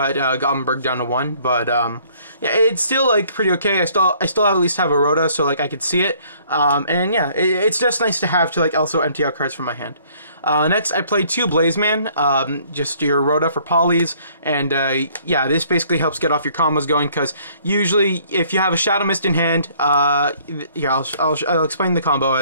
Goblinberg down to 1, but yeah, it's still like pretty okay. I still at least have a Rhoda, so like I could see it, and yeah, it's just nice to have to like also empty out cards from my hand. Next, I played 2 Blazeman, just your Rhoda for polys, and yeah, this basically helps get off your combos going, because usually if you have a Shadow Mist in hand, yeah, I'll explain the combo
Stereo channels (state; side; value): inverted; both; correlation -0.60